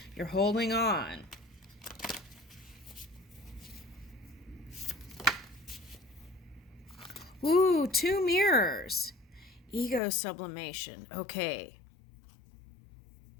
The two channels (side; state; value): right; drops out; at 10.0 s